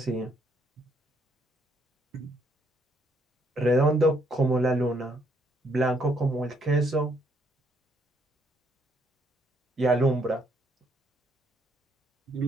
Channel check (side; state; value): both; normal; correlation 0.70